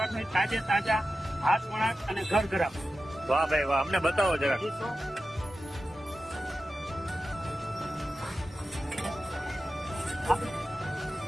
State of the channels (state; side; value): normal; both; correlation 0.92